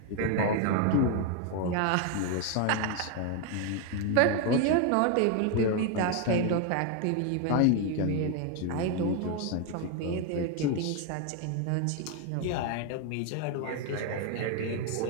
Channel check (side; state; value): both; different; correlation 0.01